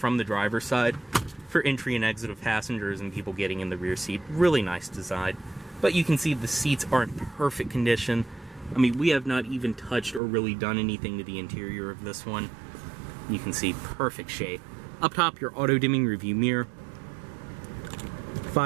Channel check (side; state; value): left; drops out; at 10.2 s